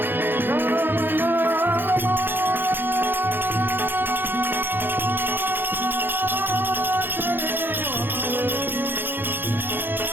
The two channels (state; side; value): late; left; 0.098 ms